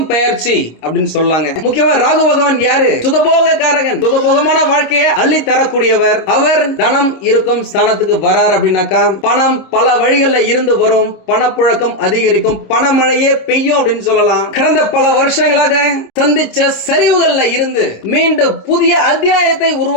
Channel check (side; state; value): right; late; 26 ms